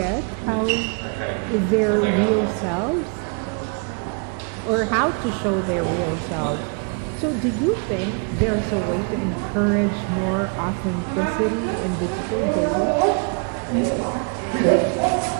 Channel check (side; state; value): left; quieter; 38.0 dB